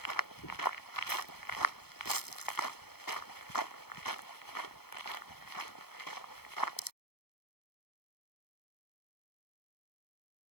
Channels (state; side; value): late; right; 0.96 ms